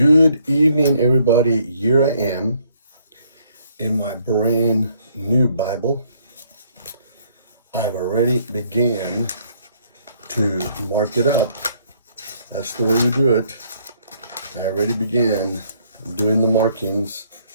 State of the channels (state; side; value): inverted; both; correlation -0.66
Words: evening, everybody. Here I am in my brand new Bible. I've already began to mark it up. That's the way we do it. I already began doing the markings,